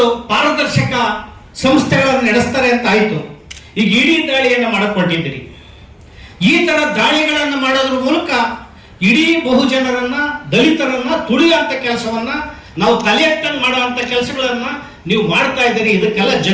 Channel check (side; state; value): both; identical; correlation 1.00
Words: ಪಾರದರ್ಶಕ ಸಂಸ್ಥೆಗಳನ್ನು ನಡೆಸ್ತಾರೆ ಅಂತ ಆಯ್ತು. ಈಗ ಇಡೀ ದಾಳಿಯನ್ನು ಮಾಡಕ್ ಹೊರಟಿದ್ದೀರಿ. ಈ ತರ ದಾಳಿಗಳನ್ನು ಮಾಡೋದ್ರ ಮೂಲಕ ಇಡೀ ಬಹುಜನರನ್ನ, ದಲಿತರನ್ನ ತುಳಿಯುವಂತ ಕೆಲಸವನ್ನ, ನಾವು ತಲೆ ಎತ್ತಂಗ್ ಮಾಡುವಂತ ಕೆಲಸಗಳನ್ನ ನೀವು ಮಾಡ್ತಾ ಇದ್ದೀರಿ. ಇದಕ್ಕೆಲ್ಲ